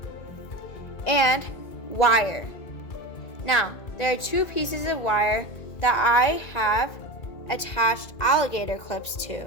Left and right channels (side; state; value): right; late; 1.9 ms